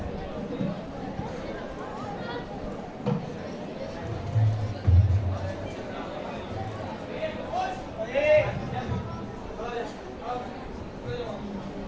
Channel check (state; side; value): identical; both; correlation 1.00